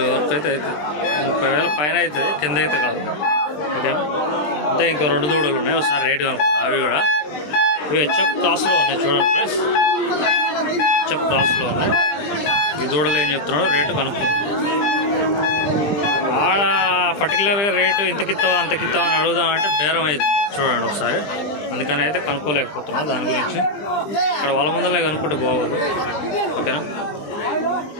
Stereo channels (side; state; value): right; late; 20 ms